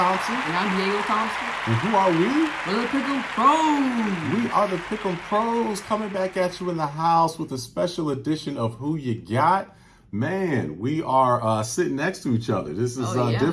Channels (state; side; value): identical; both; correlation 1.00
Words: And I'm Diego Thompson. And who are we? We're the Pick'em Pros. We are the Pick'em Pros coming back at you in the house with a special edition of Who You Got. Man, we are sitting next to each other. This is